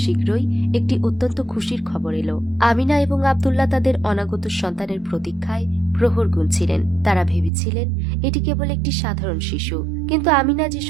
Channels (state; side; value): drops out; left; at 7.5 s